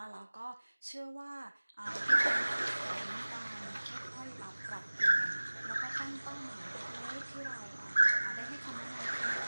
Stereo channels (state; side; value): inverted; both; correlation -1.00